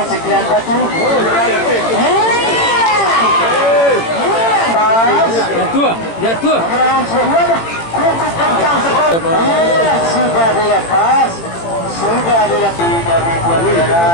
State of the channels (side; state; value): right; late; 18 ms